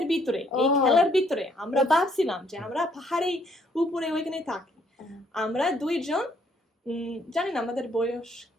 ভিতরে, এই খেলার ভিতরে আমরা ভাবছিলাম যে আমরা পাহাড়ের উপরে ওইখানে থাকি। আমরা দুইজন, জানি না আমাদের বয়স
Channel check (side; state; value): both; normal; correlation 0.67